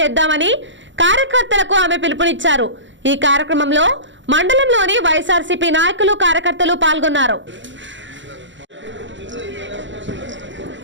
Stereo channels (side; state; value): left; late; 0.54 ms